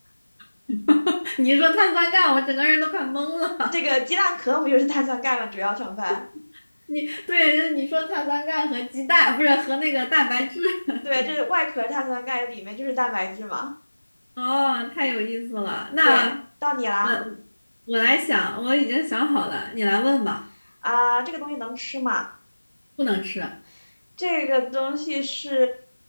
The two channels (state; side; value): inverted; both; correlation -1.00